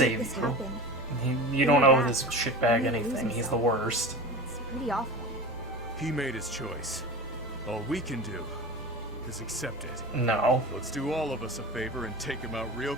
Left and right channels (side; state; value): both; normal; correlation 0.31